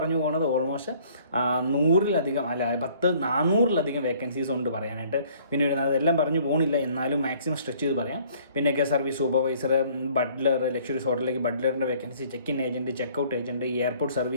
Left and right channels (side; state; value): both; inverted; correlation -0.58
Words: പോകുന്നത് almost 400-ലധികം vacancies ഉണ്ട് പറയാനായിട്ട്. പിന്നെ അതെല്ലാം പറഞ്ഞു പോകണില്ല, എന്നാലും മാക്സിമം സ്ട്രെച്ച് ചെയ്ത് പറയാം. പിന്നെ guest service supervisor, butler, luxuries ഹോട്ടലിലേക്ക് ബട്ട്ലറിൻ്റെ vacancy, check in agent, checkout agent, airport